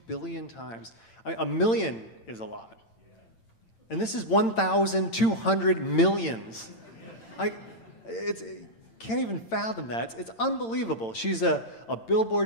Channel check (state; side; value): late; right; 8.9 ms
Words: billion times. A million is a lot. And this is 1,200 millions. Can't even fathom that. It's unbelievable. She's a Billboard